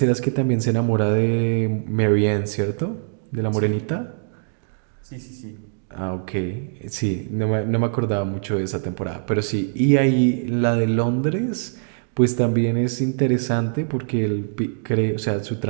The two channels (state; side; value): silent; left; digital silence